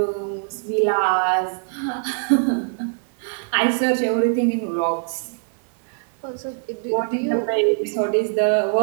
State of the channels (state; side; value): silent; left; 64 dB below the other